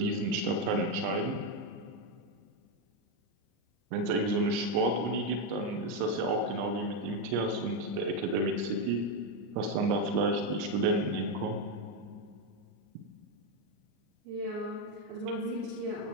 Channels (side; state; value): left; late; 39 ms